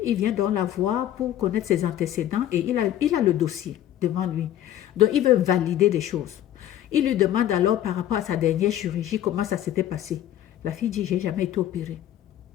il vient donc la voir pour connaître ses antécédents et il a le dossier devant lui. Donc il veut valider des choses. Il lui demande alors par rapport à sa dernière chirurgie comment ça s'était passé. La fille dit, j'ai jamais été opérée.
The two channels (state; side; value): quieter; right; 11.9 dB